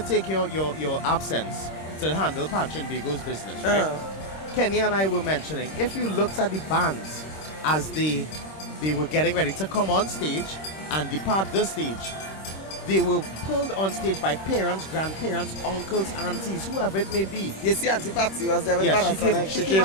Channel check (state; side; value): late; right; 26 ms